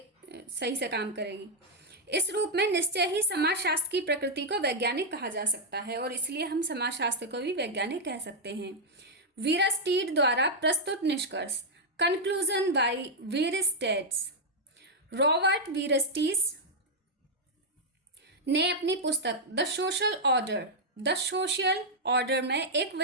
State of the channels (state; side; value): normal; both; correlation -0.03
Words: सही से काम करेगी। इस रूप में निश्चय ही समाजशास्त्र की प्रकृति को वैज्ञानिक कहा जा सकता है, और इसलिए हम समाजशास्त्र को भी वैज्ञानिक कह सकते हैं। वीरस्टीड द्वारा प्रस्तुत निष्कर्ष, कंक्लूजन बाय वीरस्टेड्स। रॉबर्ट वीरस्टीस ने अपनी पुस्तक द सोशल ऑर्डर में एक